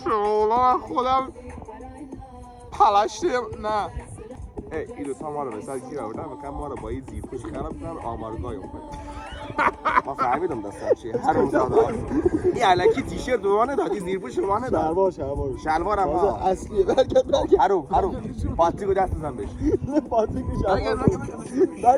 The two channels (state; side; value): identical; both; correlation 1.00